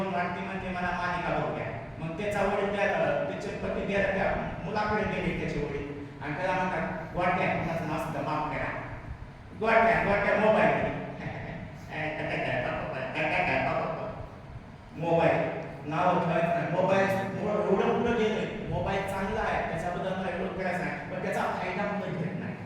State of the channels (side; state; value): both; identical; correlation 1.00